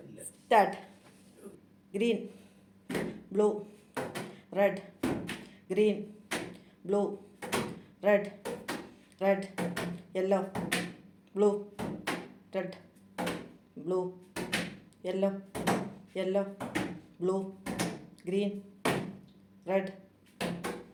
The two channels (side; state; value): both; identical; correlation 1.00